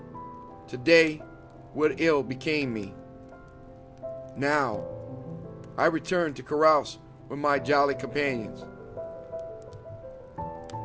today what ill became me. Now I return to carouse with my jolly companions.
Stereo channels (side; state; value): both; identical; correlation 1.00